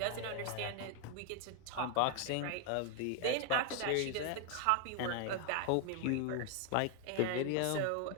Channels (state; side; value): different; both; correlation 0.01